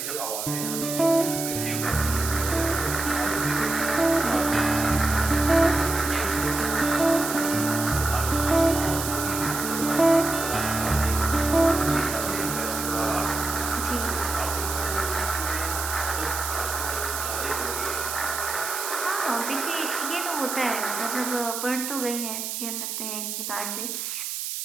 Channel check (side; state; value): right; noise; hiss, 4 dB below the sound